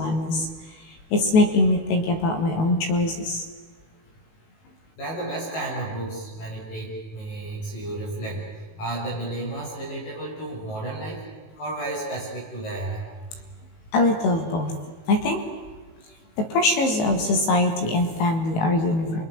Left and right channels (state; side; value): late; right; 19 ms